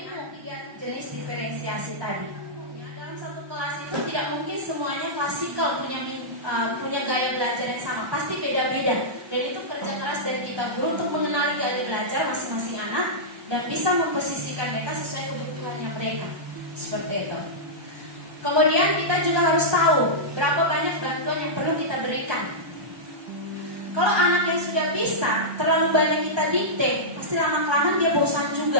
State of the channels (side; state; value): left; late; 1.2 ms